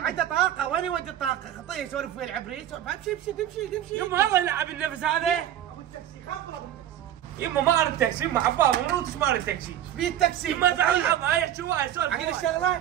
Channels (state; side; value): quieter; left; 11.2 dB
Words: طاقة وين يودي الطاقة؟ خطيه يسولف ويا العبريت امشي امشي. يما الله يلعب النفس هذا. ابو التاكسي خبره ابو التاكسي. يما ما ارد تاكسي يما حباب منو تسمع التاكسي. ايش فيه التاكسي؟ يما زعل الحظ يحكي ويا يسولف. عقل